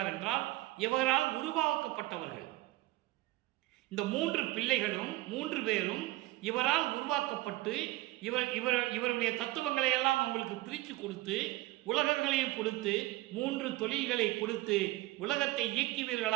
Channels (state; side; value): quieter; left; 18.7 dB